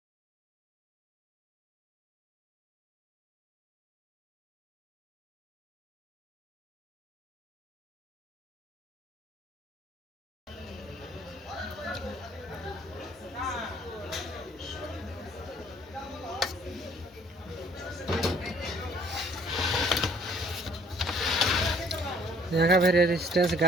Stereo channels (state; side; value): normal; both; correlation 0.58